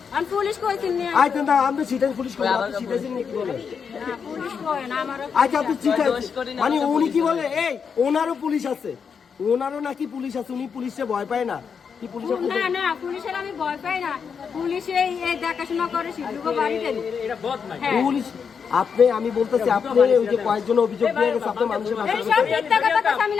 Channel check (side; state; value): right; quieter; 6.4 dB